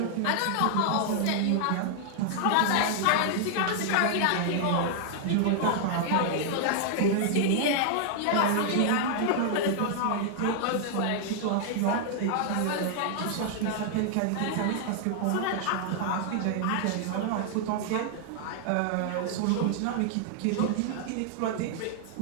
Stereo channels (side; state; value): both; different; correlation 0.00